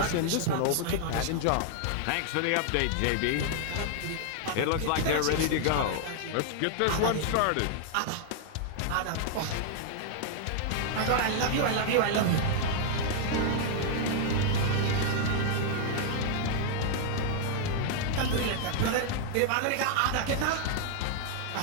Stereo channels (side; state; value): both; different; correlation 0.00